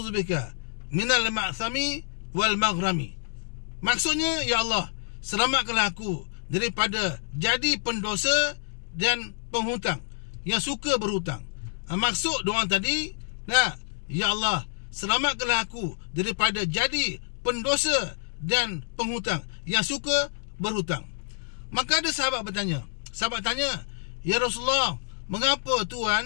minal ma'thami wal maghrami. Maksudnya, ya Allah, selamatkanlah aku daripada jadi pendosa dan penghutang yang suka berhutang. Maksud doa tadi, ya Allah, selamatkanlah aku daripada jadi pendosa dan penghutang yang suka berhutang. Maka ada sahabat bertanya, sahabat tanya, ya Rasulullah, mengapa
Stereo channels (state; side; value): silent; right; 60 dB below the other